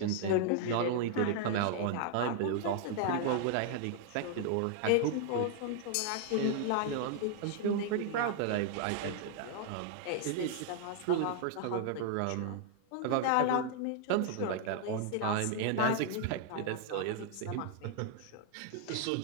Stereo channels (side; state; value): both; different; correlation 0.00